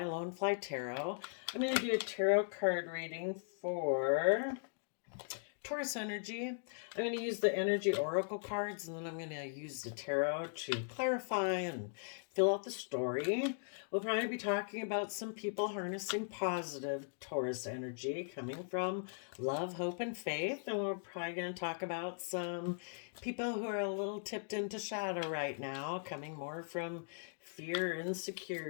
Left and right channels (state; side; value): silent; right; digital silence